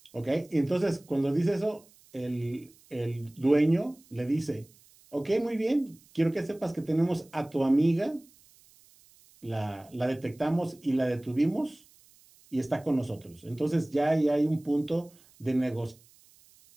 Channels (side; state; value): right; noise; hiss, 28 dB below the sound